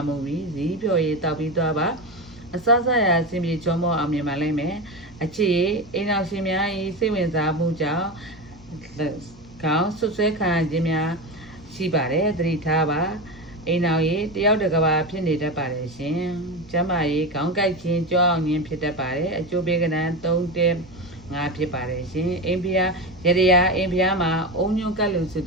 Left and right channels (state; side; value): normal; both; correlation 0.20